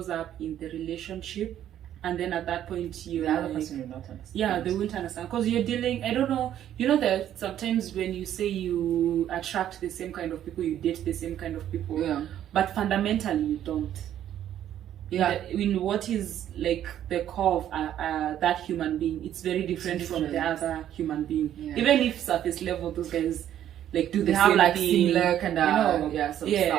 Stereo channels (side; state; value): left; quieter; 11.1 dB